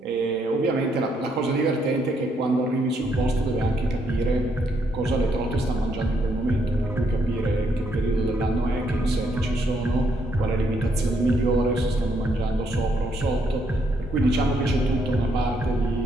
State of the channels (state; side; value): normal; both; correlation 0.74